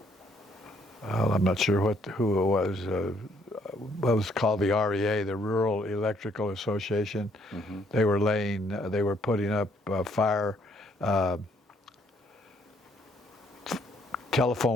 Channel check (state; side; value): normal; both; correlation 0.67